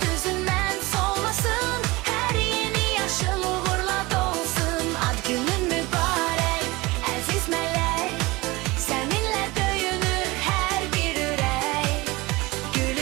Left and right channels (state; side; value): quieter; left; 22.2 dB